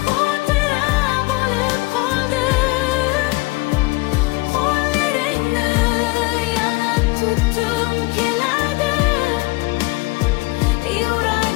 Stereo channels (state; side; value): quieter; right; 23.5 dB